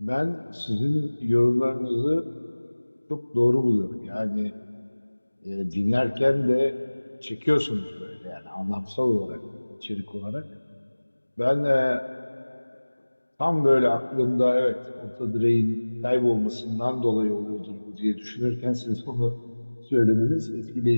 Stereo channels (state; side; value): inverted; both; correlation -1.00